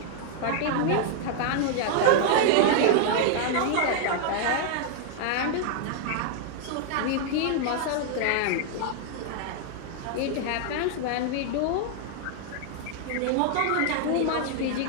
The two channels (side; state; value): both; different; correlation -0.01